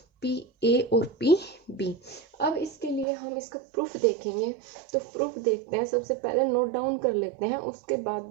p a और p b। अब इसके लिए हम इसका प्रूफ देखेंगे, तो प्रूफ देखते हैं। सबसे पहले नोट डाउन कर लेते हैं, उसके बाद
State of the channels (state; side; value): drops out; left; at 3.1 s